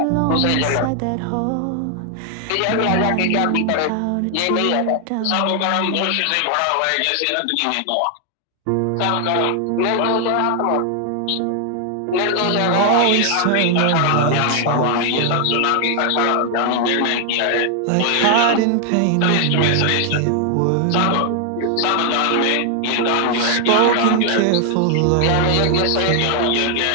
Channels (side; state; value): both; different; correlation 0.00